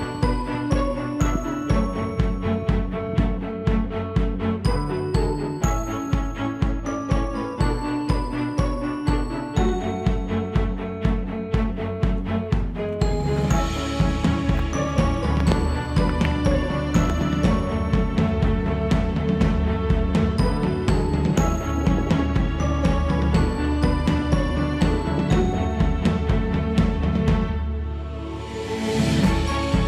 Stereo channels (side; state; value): both; identical; correlation 1.00